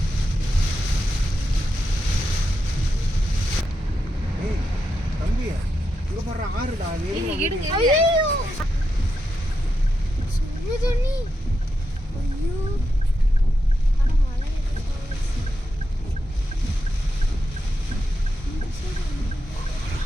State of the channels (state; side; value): normal; both; correlation 0.86